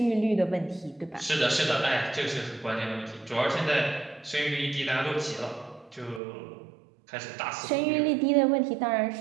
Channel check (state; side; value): drops out; left; at 6.2 s